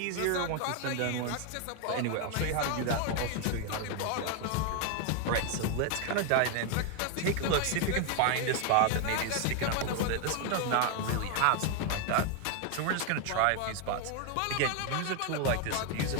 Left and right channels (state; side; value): different; both; correlation 0.01